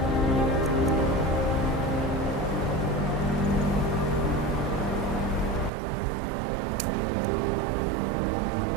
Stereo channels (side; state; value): left; drops out; at 5.7 s